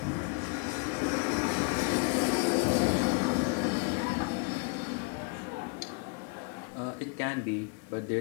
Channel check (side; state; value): right; quieter; 34.4 dB